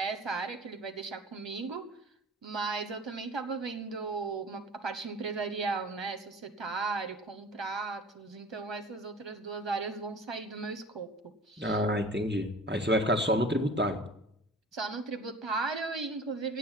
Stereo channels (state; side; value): normal; both; correlation 0.42